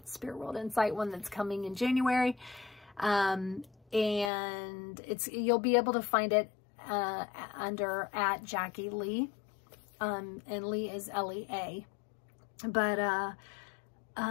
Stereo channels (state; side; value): drops out; right; at 4.3 s